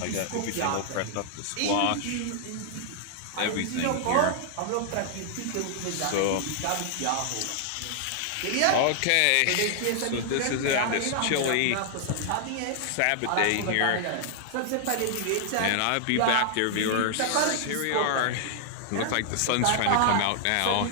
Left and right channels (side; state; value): both; different; correlation -0.01